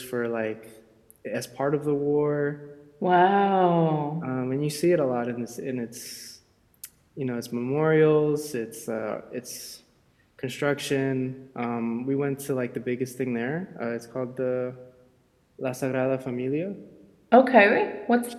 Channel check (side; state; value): both; identical; correlation 1.00